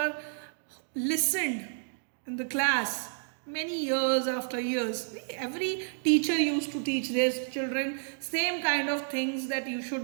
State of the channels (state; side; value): silent; left; digital silence